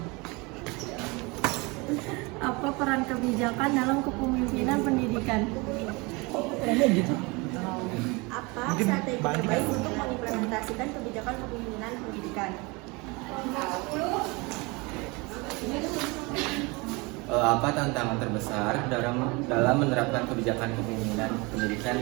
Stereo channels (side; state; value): left; quieter; 26.5 dB